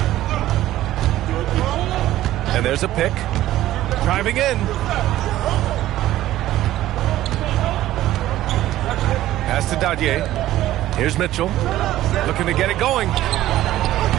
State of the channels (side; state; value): left; quieter; 14.4 dB